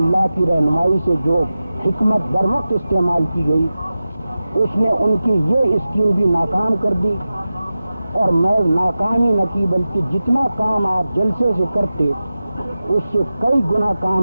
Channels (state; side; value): inverted; both; correlation -0.94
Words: کی رہنمائی سے جو حکمت بر وقت استعمال کی گئی اس نے ان کی یہ اسکیم بھی ناکام کر دی، اور محض ناکامی نہ کی بلکہ جتنا کام آپ جلسے سے کرتے اس سے کئی گنا